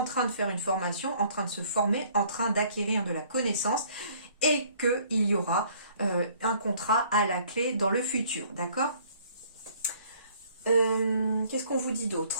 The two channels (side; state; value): both; inverted; correlation -0.58